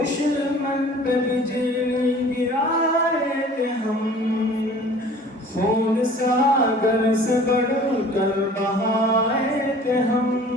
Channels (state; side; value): normal; both; correlation 0.47